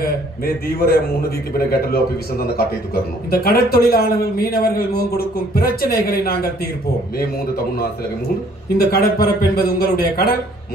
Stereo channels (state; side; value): normal; both; correlation 0.60